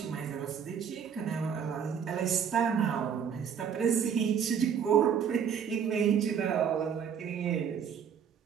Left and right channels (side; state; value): left; quieter; 7.6 dB